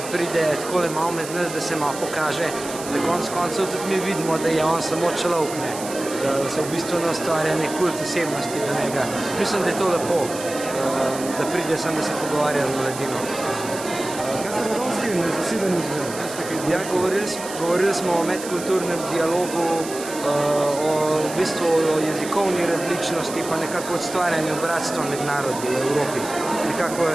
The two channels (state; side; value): noise; right; hiss, 11 dB below the sound